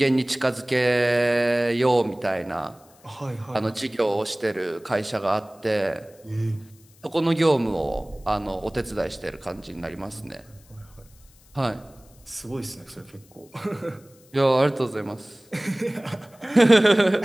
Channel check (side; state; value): left; noise; hiss, 28 dB below the sound